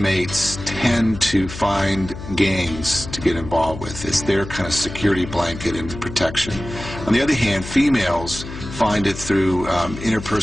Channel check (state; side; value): noise; left; hum, 11 dB below the sound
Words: tend to find gangs to get involved with. It's their kind of security blanket and protection. On the other hand, females find it through